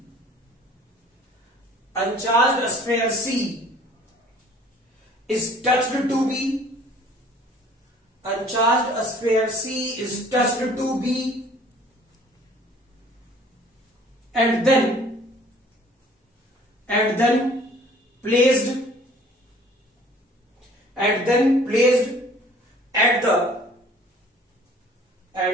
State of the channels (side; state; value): both; normal; correlation 0.53